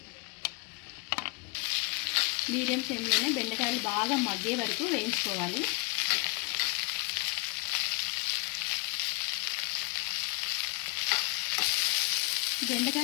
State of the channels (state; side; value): quieter; right; 31.5 dB